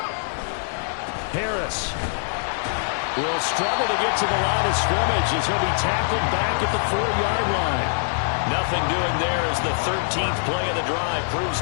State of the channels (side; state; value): right; silent; digital silence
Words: Harris will struggle to get to the line of scrimmage as he'll be tackled back at the 4-yard line. Nothing doing there as the 13th play of the drive proves